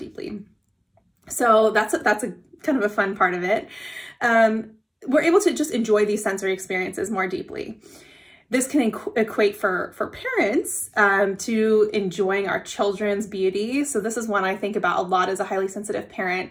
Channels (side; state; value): both; identical; correlation 1.00